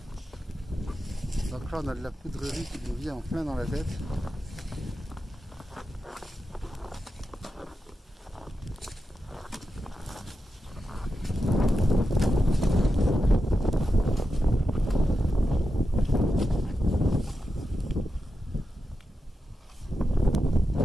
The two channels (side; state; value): both; normal; correlation 0.89